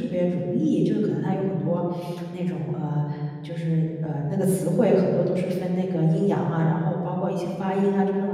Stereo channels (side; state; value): both; identical; correlation 1.00